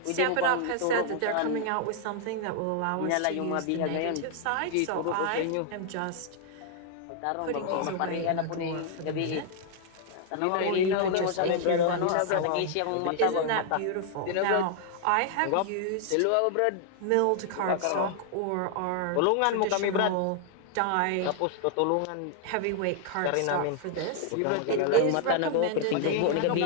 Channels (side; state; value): both; different; correlation 0.00